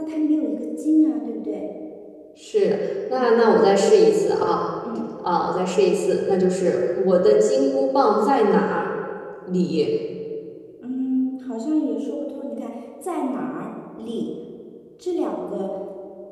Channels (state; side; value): identical; both; correlation 1.00